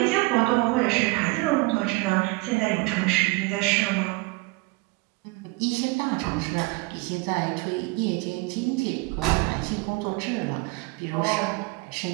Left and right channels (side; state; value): left; quieter; 24.7 dB